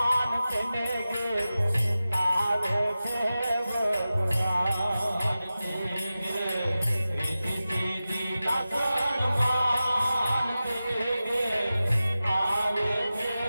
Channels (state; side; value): inverted; both; correlation -0.94